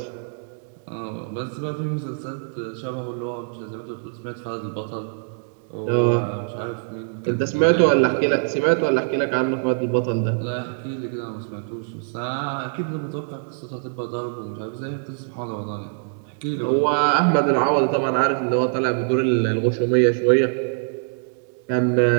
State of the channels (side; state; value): left; silent; digital silence